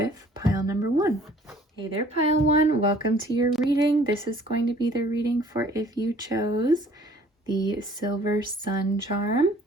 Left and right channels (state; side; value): normal; both; correlation 0.54